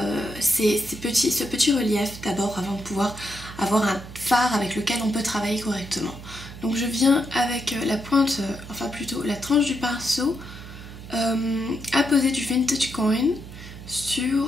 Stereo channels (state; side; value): noise; right; hum, 14 dB below the sound